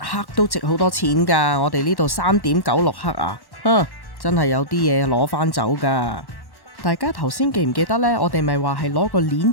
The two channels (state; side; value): late; right; 1.1 ms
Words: 都值好多錢噶，我哋呢度3.96克啊，真係有啲嘢攞翻走噶。大家頭先記唔記得呢？我哋咪話係攞個鏈